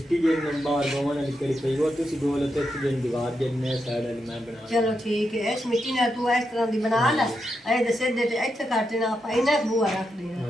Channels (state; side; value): normal; both; correlation 0.85